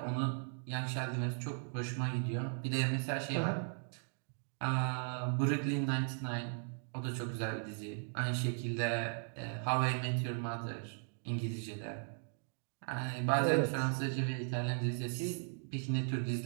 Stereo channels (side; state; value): left; silent; 53 dB below the other